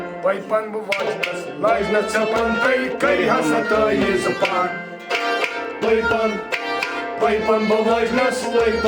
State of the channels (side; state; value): both; identical; correlation 1.00